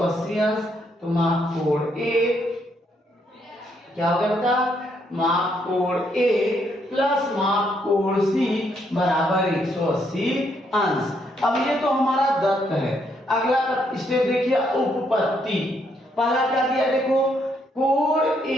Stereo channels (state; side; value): normal; both; correlation 0.73